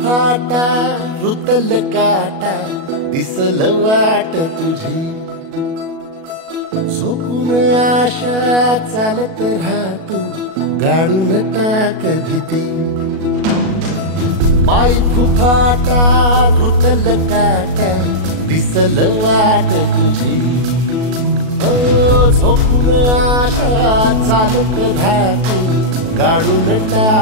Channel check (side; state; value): left; late; 37 ms